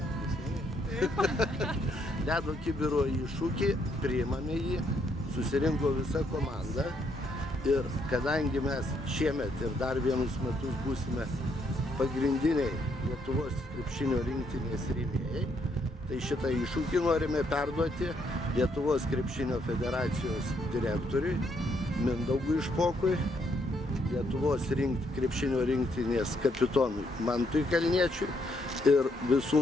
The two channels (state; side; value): normal; both; correlation 0.73